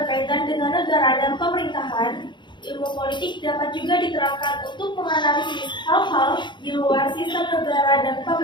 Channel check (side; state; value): right; late; 0.22 ms